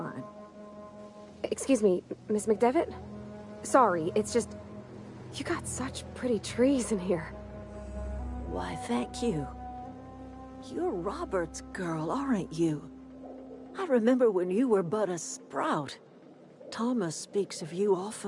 Excuse me, Miss McDevitt? Sorry, it's just... You got such pretty trees in here. Why, thank you. You're Robert's girl, aren't you? I remember when you were but a sprout. Thomas speaks of you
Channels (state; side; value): identical; both; correlation 1.00